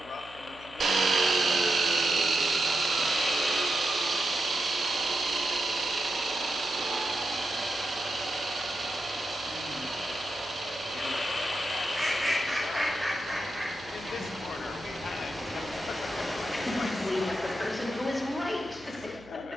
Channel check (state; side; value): noise; right; hum, 22 dB below the sound